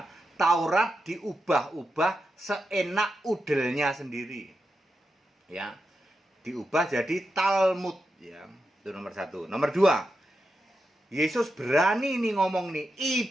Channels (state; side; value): normal; both; correlation 0.87